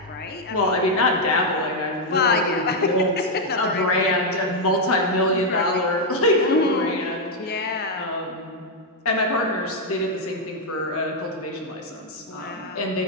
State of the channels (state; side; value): normal; both; correlation -0.01